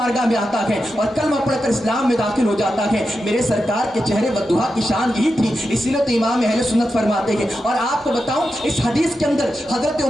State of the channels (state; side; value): normal; both; correlation 0.89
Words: میں آتا ہے اور کلمہ پڑھ کر اسلام میں داخل ہو جاتا ہے. میرے سرکار کے چہرے والدہا کی شان یہی تھی, اسی لیے تو امام اہل سنت فرماتے ہیں. اور آپ کو بتاؤں اس حدیث کے اندر حضرت